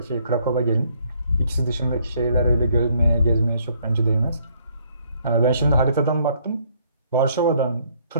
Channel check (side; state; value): both; inverted; correlation -0.66